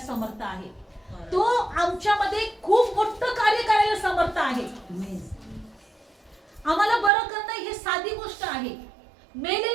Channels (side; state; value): left; drops out; at 7.1 s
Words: समर्थ आहे. तो आमच्यामध्ये खूप मोठं कार्य करायला समर्थ आहे. आम्हाला बरं करणं हे साधी गोष्ट आहे,